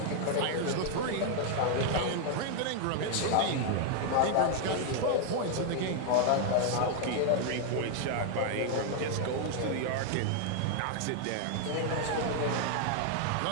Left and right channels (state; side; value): different; both; correlation 0.00